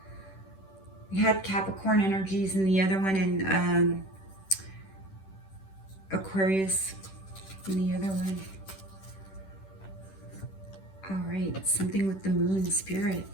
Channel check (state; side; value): late; right; 10 ms